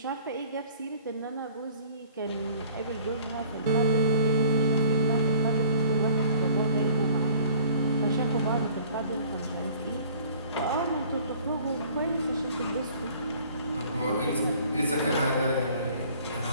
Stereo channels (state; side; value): inverted; both; correlation -0.53